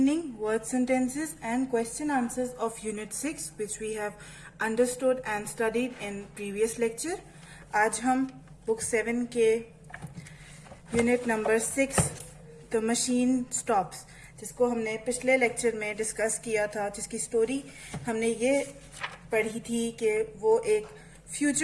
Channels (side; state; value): both; identical; correlation 1.00